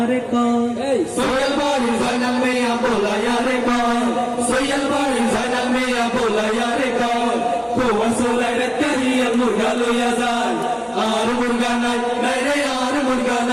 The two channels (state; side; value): identical; both; correlation 1.00